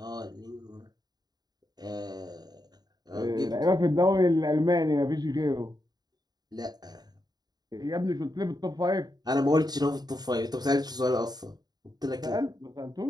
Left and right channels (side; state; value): left; late; 0.19 ms